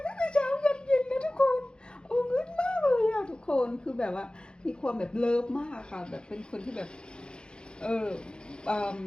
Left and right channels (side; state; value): right; late; 0.050 ms